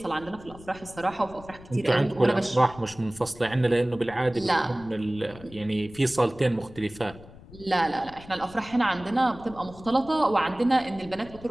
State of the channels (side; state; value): left; noise; rumble, 19 dB below the sound